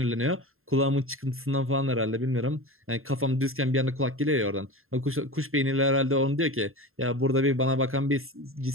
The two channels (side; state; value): left; late; 0.61 ms